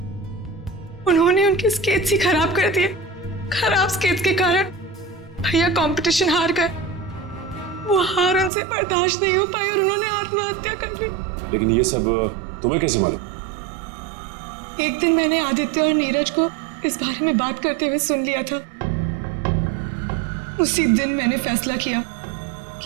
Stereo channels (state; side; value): drops out; left; at 8.5 s